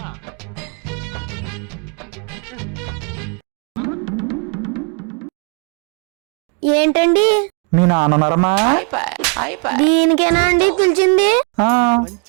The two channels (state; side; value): quieter; left; 36.8 dB